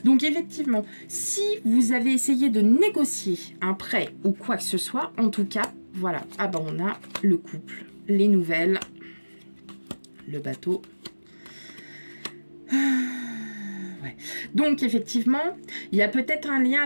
Donc, effectivement, si vous avez essayé de négocier un prêt ou quoi que ce soit, en tout cas, voilà. Ah ben, on a le couple, les nouvelles, le bateau. Ouais. Donc, effectivement, il y a peut-être un lien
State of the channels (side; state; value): both; inverted; correlation -1.00